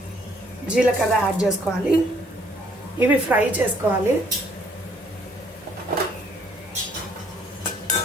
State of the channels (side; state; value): both; normal; correlation 0.64